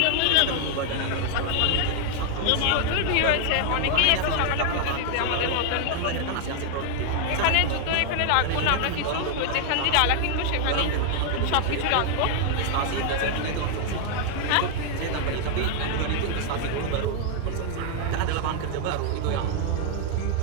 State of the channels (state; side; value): different; both; correlation 0.00